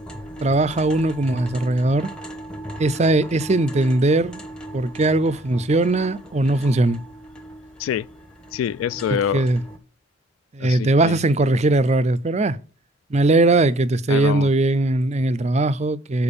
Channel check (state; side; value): normal; both; correlation 0.58